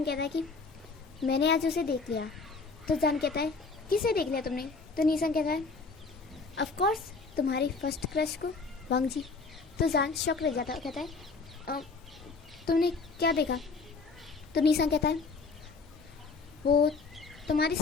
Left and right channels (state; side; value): quieter; right; 4.3 dB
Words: कहता है कि मैंने आज उसे देख लिया। तो जान कहता है किसे देख लिया तुमने। तो निया सांग कहता है ऑफ कोर्स तुम्हारी फर्स्ट क्रश को, वांग जी। तो जान शॉक रह जाता है, कहता है तुमने क्या देखा। तो निया सांग कहता है वो तुम्हारे